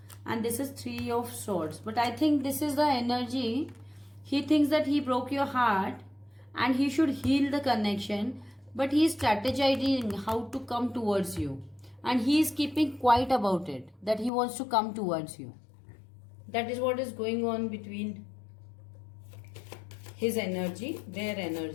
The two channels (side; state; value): right; drops out; at 14.3 s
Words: and this is 3 of Swords. But I think this is the energy. He thinks that he broke your heart and he should heal the connection, but he is strategizing how to come towards you. And he is keeping quiet about it, that he wants to come towards you. That is what is going on between his energy, their